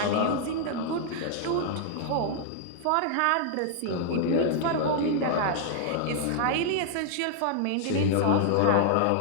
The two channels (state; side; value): different; both; correlation -0.01